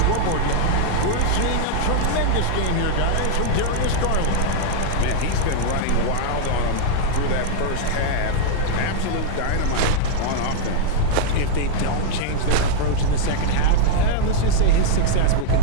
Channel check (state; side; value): different; both; correlation -0.01